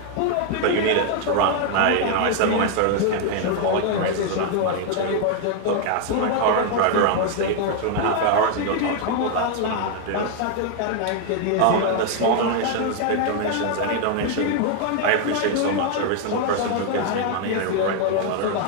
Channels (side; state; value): both; different; correlation 0.00